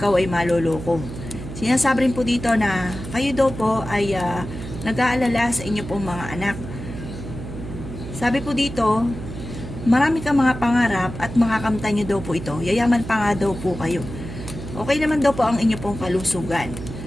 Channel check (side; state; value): right; noise; hum, 10 dB below the sound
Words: ay maloloko. Sinasabi rin po dito na kayo daw po ay nag-aalala sa inyo pong mga anak. Sabi po dito, marami kang mga pangarap at makakamtan nyo daw po ito. Yayaman pa nga daw po kayo. Okay naman daw po ang inyo pong kalusugan.